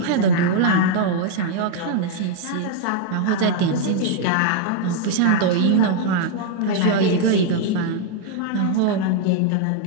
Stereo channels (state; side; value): different; both; correlation 0.00